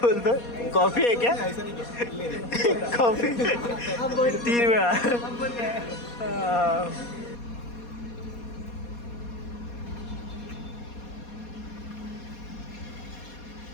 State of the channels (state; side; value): late; right; 4.2 ms